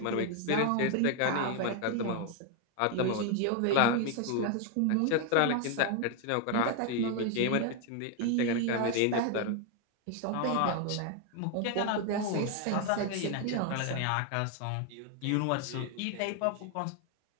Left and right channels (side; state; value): both; different; correlation 0.01